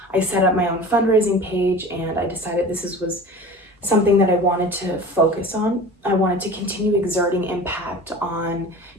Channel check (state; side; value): normal; both; correlation 0.38